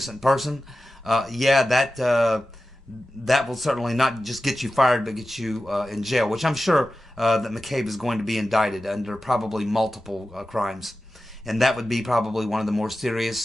person. That will certainly not just get you fired, but get you in jail, which I'm sure that McCabe is going to be indicted under probably multiple crimes. And that would be probably one of the more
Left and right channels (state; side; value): normal; both; correlation 0.94